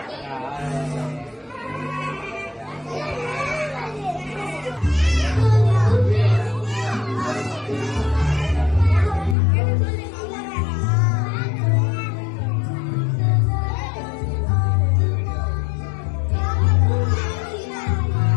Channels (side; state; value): right; drops out; at 9.3 s